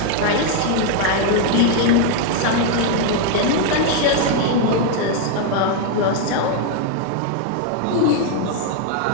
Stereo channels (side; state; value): both; different; correlation 0.00